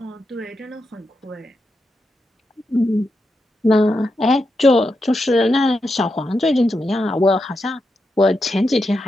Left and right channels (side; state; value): both; normal; correlation 0.86